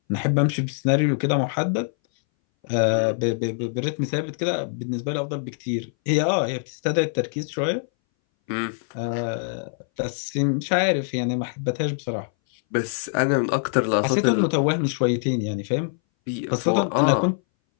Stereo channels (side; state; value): right; silent; 61 dB below the other